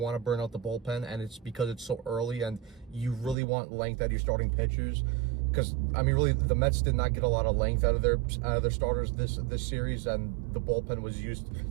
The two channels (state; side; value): drops out; left; at 3.4 s